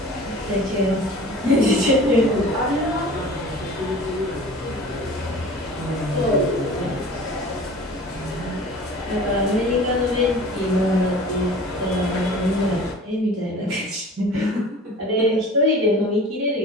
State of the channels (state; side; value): normal; both; correlation 0.42